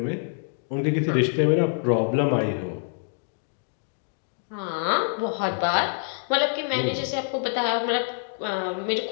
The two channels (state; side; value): silent; right; 61 dB below the other